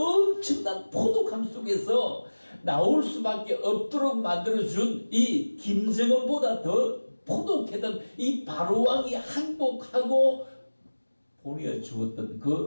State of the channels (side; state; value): both; inverted; correlation -1.00